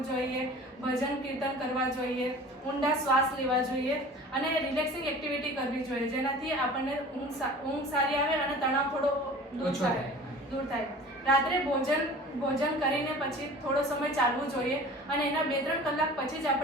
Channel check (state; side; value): normal; both; correlation 0.42